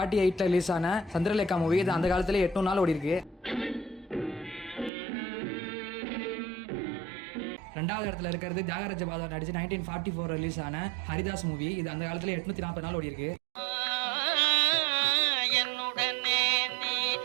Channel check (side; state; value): left; drops out; at 4.9 s